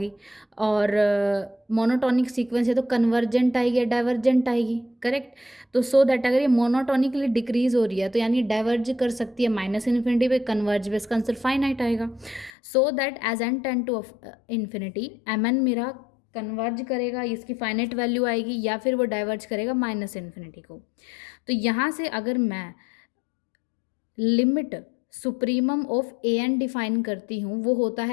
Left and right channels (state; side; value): drops out; right; at 12.5 s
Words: और मोनोटोनिक सीक्वेंस है तो कन्वर्जेंट आएगी या डाइवर्जेंट आएगी? करेक्ट। तो सो दैट अगर ये मोनोटोनिकली डिक्रीज हो रही है तो यानी डाइवर्ज कर सकती है माइनस इन्फिनिटी पे, कन्वर्ज पे इसका आंसर फाइनाइट आएगा। So that as N tend to infinity M N मेरा कन्वर्ज करेगा, इसकी फाइनाइट वैल्यू आएगी, या फिर वो डाइवर्ज करेगा माइनस इन्फिनिटी को। तो यहाँ से अगर मैं limit supremum of A N define करती हूँ, वो होता